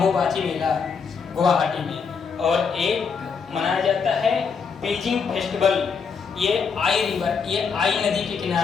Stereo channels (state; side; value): quieter; right; 5.8 dB